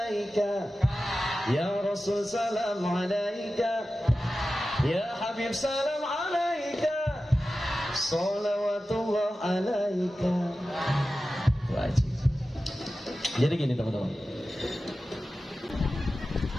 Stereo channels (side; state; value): both; normal; correlation 0.94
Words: ya Rasul salam alaika, ya Habib salam alaika, salawatullah alaika. Wajib. Jadi gini teman-teman,